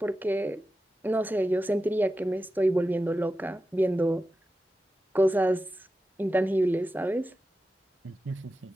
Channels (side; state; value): both; normal; correlation 0.92